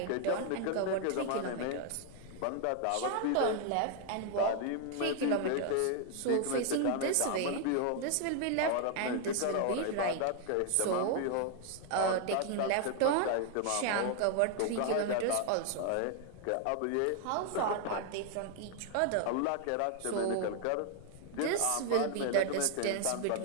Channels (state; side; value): different; both; correlation 0.00